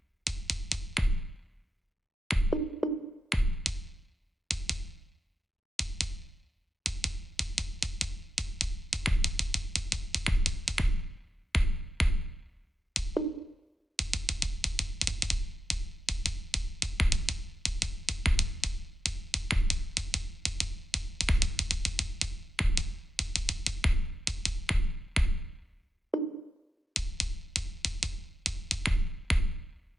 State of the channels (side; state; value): both; normal; correlation 0.88